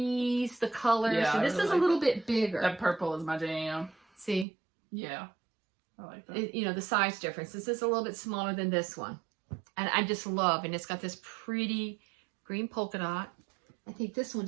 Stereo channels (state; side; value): drops out; left; at 4.5 s